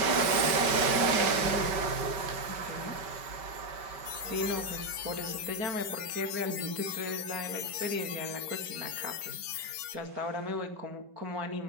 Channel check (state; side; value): late; left; 5.2 ms